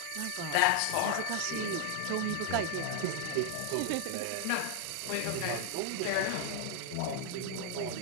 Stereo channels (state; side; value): different; both; correlation 0.00